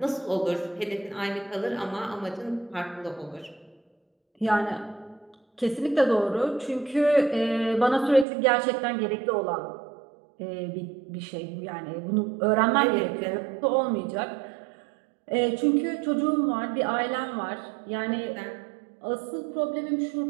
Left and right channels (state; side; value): drops out; left; at 8.2 s